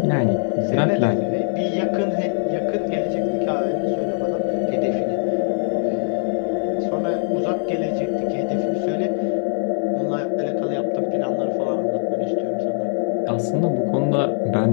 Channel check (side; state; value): right; silent; 64 dB below the other